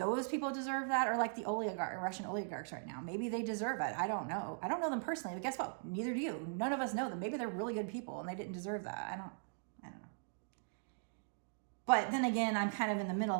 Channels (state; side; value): silent; left; digital silence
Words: people deserve that, or like the Russian oligarchs right now. Maybe they deserve it. I don't know. I don't know them personally, but guess what? Neither do you. None of us know them. Maybe they're really good people and they didn't deserve that. I don't know. But then again, I'm kind of in the